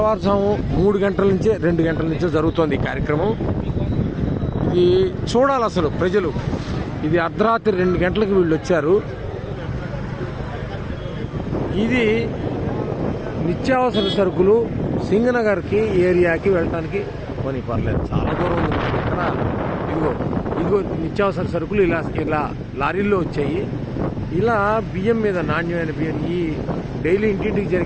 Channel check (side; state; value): both; identical; correlation 1.00